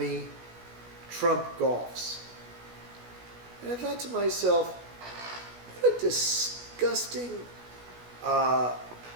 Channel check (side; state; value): left; late; 16 ms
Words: Trump golfs." And I thought to myself, what a disgusting,